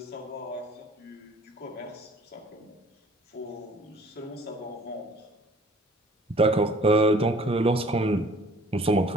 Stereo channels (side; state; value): both; normal; correlation 0.53